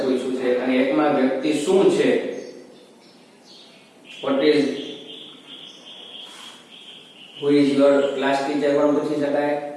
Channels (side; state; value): both; identical; correlation 1.00